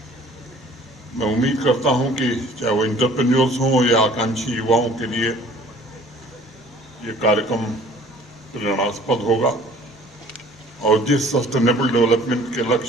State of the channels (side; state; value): both; normal; correlation 0.52